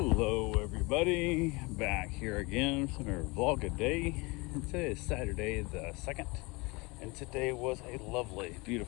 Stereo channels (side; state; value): right; quieter; 26.1 dB